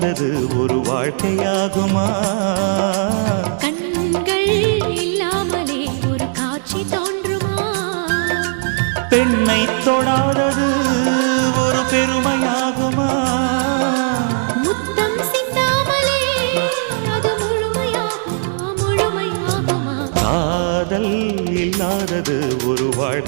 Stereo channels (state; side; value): silent; left; digital silence